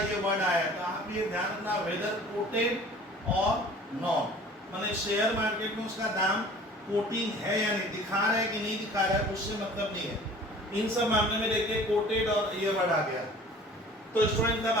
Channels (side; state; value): both; normal; correlation 0.47